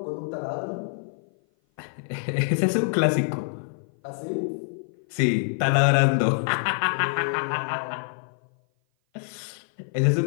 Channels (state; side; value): silent; right; 56 dB below the other